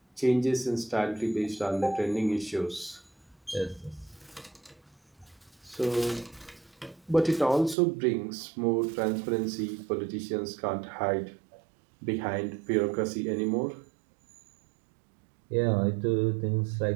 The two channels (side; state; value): left; drops out; at 7.8 s